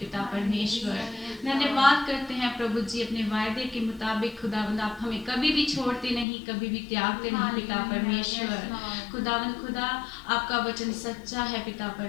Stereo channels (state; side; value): drops out; right; at 6.2 s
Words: परमेश्वर। धन्यवाद करते हैं प्रभु जी, अपने वायदे के मुताबिक खुदावंद आप हमें कभी भी छोड़ते नहीं, कभी भी त्यागते नहीं पिता परमेश्वर। खुदावंद खुदा आपका वचन सच्चा है पिता